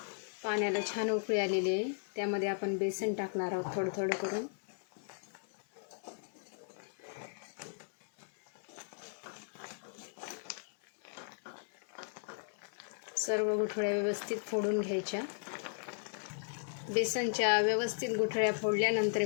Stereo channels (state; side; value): silent; right; 54 dB below the other